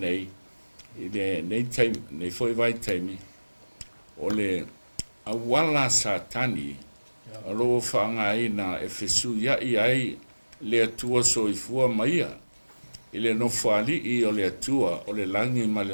i le nei foi vai taimi o le awala SATANI alo whanga ina e fesu ia i ai le atua soifua maia i le nofali i o le atua o le langi ma le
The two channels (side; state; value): both; inverted; correlation -1.00